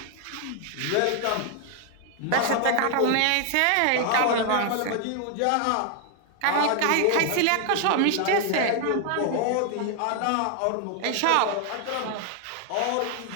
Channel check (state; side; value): different; both; correlation 0.00